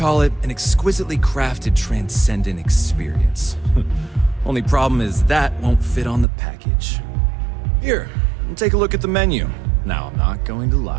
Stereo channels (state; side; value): drops out; left; at 6.2 s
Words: it an exquisitely crafted, transcendent experience. Only problem is that won't fit on the package. Here, take a look at the menu. Now, I'm not going to